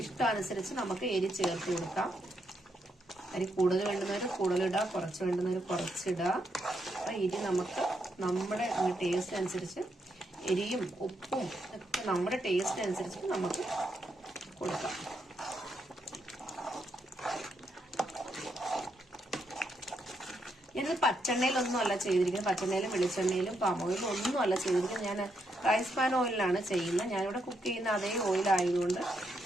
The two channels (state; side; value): normal; both; correlation 0.79